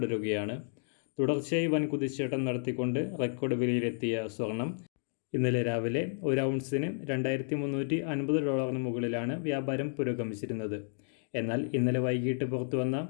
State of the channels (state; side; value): silent; right; digital silence